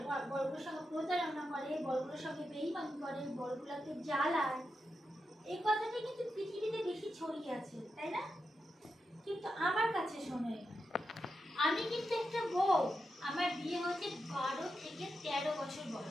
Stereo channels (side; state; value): both; normal; correlation 0.88